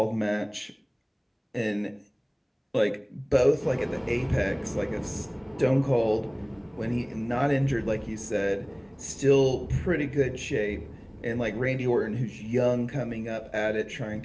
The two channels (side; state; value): both; identical; correlation 1.00